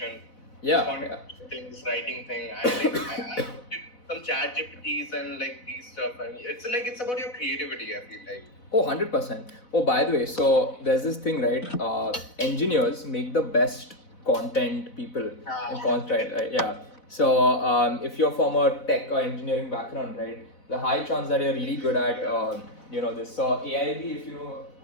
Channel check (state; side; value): late; right; 4.0 ms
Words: Content things, writing thing. I some chat GPTs and these stuff, and it's about your creativity. I feel like. Oh, 100%. Oh, by the way, so there's this thing, right? Engineers make the best content people in content, right? Yeah. So if you're from a tech or engineering background, right, the high chance that you're really good at, this. So AIB, if you know,